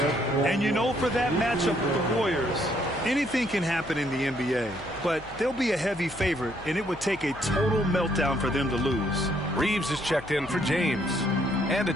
And you know, for that matchup with the Warriors, anything can happen in the NBA, but they'll be a heavy favorite, and it would take a total meltdown for them to lose. Reeves is checked in for James. And a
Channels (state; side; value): noise; left; hum, 19 dB below the sound